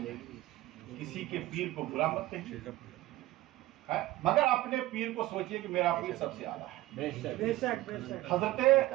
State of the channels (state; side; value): quieter; left; 16.8 dB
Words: گی، کسی کے پیر کو برا مت کہیے، مگر اپنے پیر کو سوچئے کہ میرا پیر سب سے اعلیٰ ہے۔ حضرت